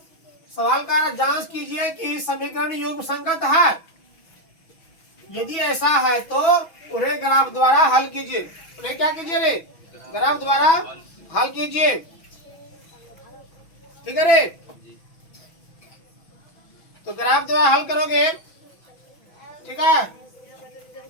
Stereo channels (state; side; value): late; right; 6.2 ms